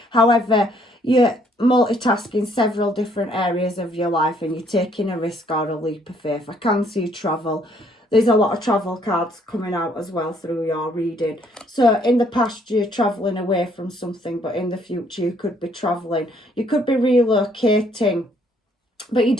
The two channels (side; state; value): both; normal; correlation 0.66